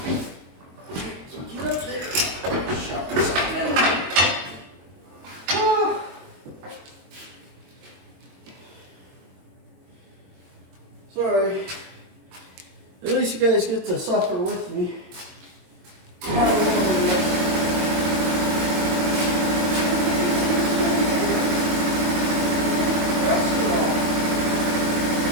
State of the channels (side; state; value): left; late; 22 ms